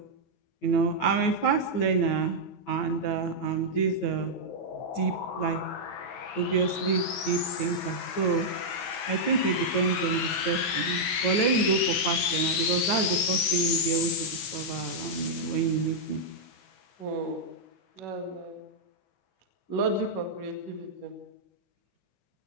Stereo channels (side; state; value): right; late; 15 ms